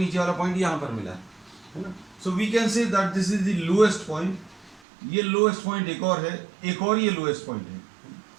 वाला पॉइंट यहाँ पर मिला है ना. So we can say that this is the lowest point. ये लोएस्ट पॉइंट एक और है, एक और ये लोएस्ट पॉइंट है,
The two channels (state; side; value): drops out; left; at 4.8 s